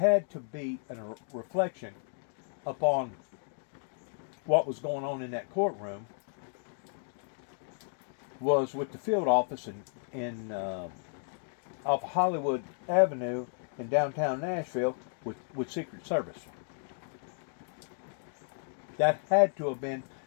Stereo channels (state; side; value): silent; right; 56 dB below the other